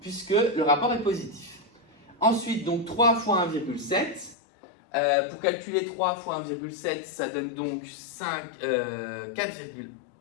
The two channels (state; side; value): drops out; right; at 4.4 s